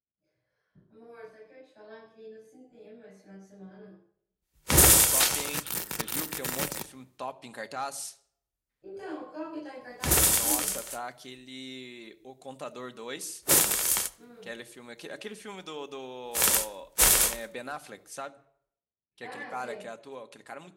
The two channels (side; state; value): both; identical; correlation 1.00